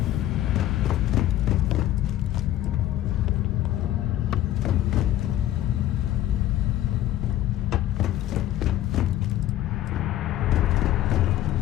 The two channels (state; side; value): quieter; right; 13.4 dB